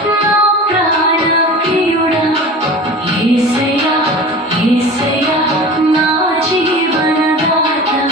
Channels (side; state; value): both; normal; correlation 0.36